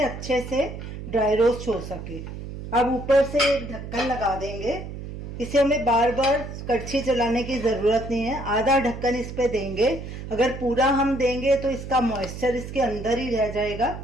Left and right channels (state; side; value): noise; right; hum, 9 dB below the sound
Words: अच्छे से ड्राई रोस्ट हो सके। अब ऊपर से एक ढक्कन लगा देंगे। इसे हमें बार बार कड़छी चलाने की ज़रूरत नहीं है। आधा ढक्कन इस पे देंगे। अगर पूरा हम देंगे तो इसका मॉइस्चर इसके अंदर ही रह जाएगा।